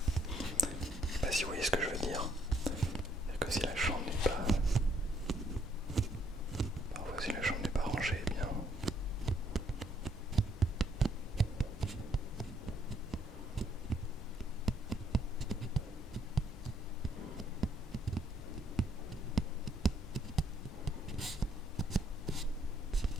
Je sais pas si vous voyez ce que je veux dire. C'est-à-dire que si la chambre n'est pas... Parfois si la chambre n'est pas rangée, eh bien...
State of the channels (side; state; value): both; normal; correlation 0.69